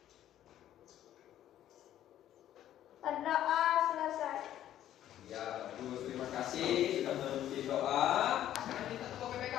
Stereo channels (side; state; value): right; quieter; 11.9 dB